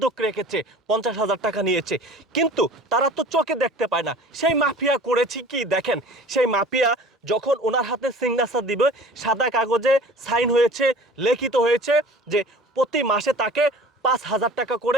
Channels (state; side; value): normal; both; correlation 0.44